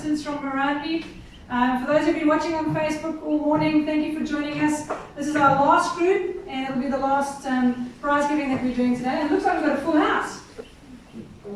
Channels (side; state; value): both; identical; correlation 1.00